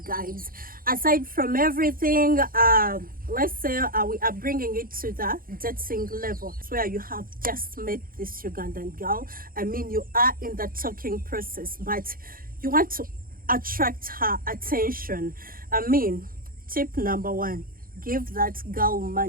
guys. Aside from everything, let's say we are bringing it to the dating level where you have just met this Ugandan girl. I mean, you are in the talking process, but you want to attract her attention. I mean, tip number one, give that girl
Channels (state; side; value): late; left; 0.42 ms